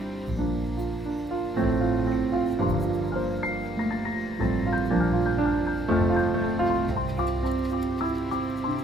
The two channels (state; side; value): normal; both; correlation 0.69